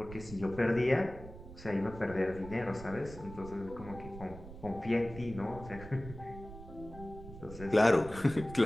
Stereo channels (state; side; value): noise; right; rumble, 14 dB below the sound